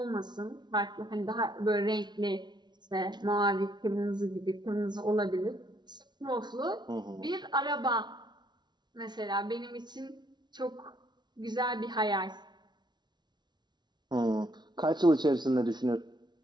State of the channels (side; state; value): left; late; 0.21 ms